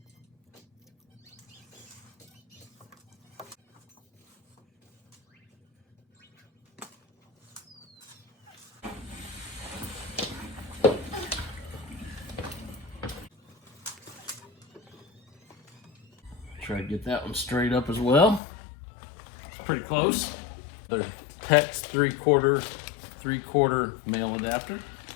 Try to get that one straight up as well. Pretty close. The PEX 3/4 male adapter,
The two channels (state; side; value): drops out; right; at 18.4 s